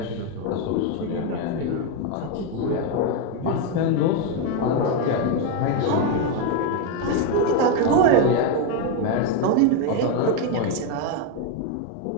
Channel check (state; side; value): different; both; correlation 0.02